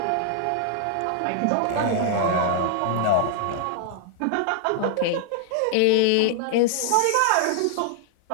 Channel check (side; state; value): both; different; correlation 0.00